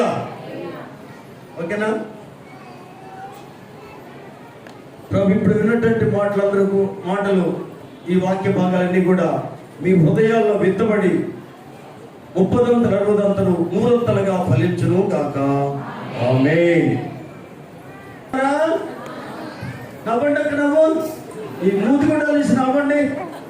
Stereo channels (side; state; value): both; identical; correlation 1.00